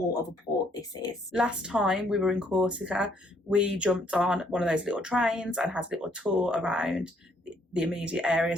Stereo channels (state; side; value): normal; both; correlation 0.67